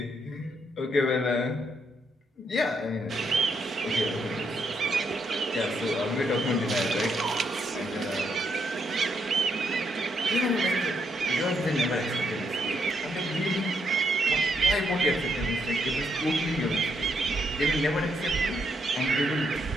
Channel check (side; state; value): both; normal; correlation 0.77